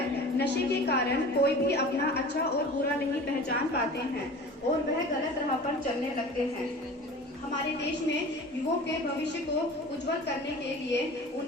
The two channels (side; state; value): both; normal; correlation 0.39